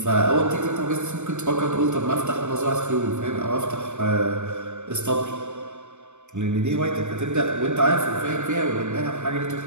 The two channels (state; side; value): late; left; 0.84 ms